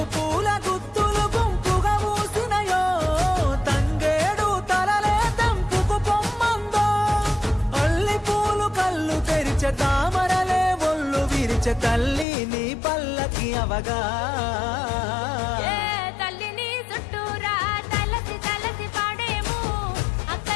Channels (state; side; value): drops out; right; at 12.2 s